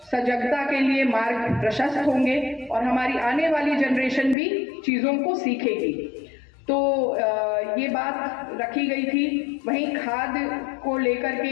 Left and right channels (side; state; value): right; drops out; at 4.4 s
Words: सजगता के लिए मार्ग प्रशस्त होंगे और हमारी आने वाली जनरेशन भी चीजों को सीखेगी। तो ये बात रखी गई थी। वहीं खाद को लेकर